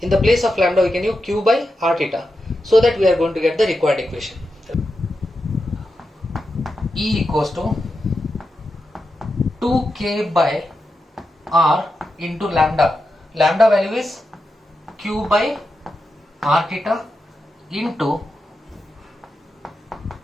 the place of lambda we can use q by r theta, so that we are going to get the required equation. E equals to 2k by r into lambda. Lambda value is q by r theta into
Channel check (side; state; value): both; normal; correlation 0.88